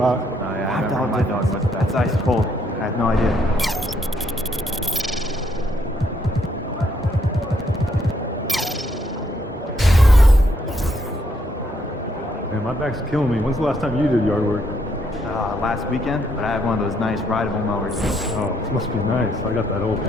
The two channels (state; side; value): normal; both; correlation 0.72